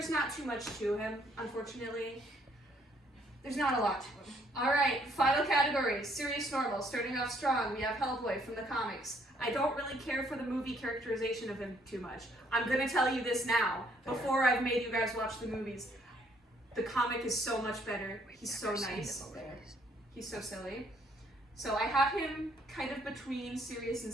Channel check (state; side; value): normal; both; correlation 0.66